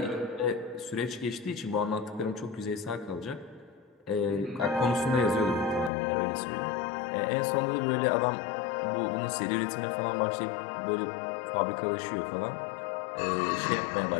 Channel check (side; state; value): right; drops out; at 5.9 s